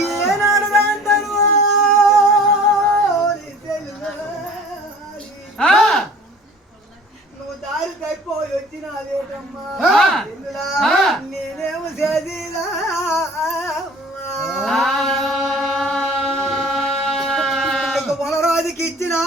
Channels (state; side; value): normal; both; correlation 0.47